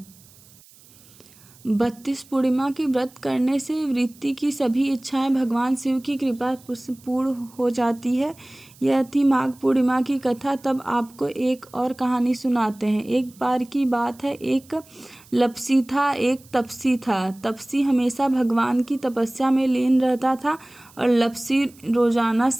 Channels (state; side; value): noise; right; hiss, 25 dB below the sound